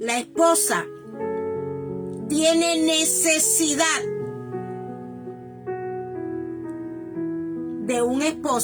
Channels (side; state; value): both; identical; correlation 1.00